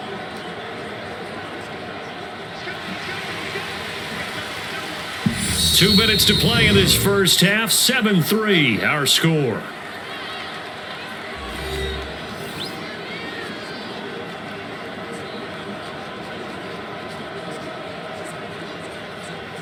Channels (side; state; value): both; identical; correlation 1.00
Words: Two minutes to play in this first half. 7-3, our score.